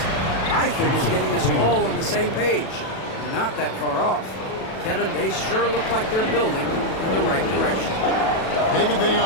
I think it's getting us all on the same page. We're not that far off. Kevin, they sure look like they're building in the right direction. David, they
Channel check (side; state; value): right; late; 37 ms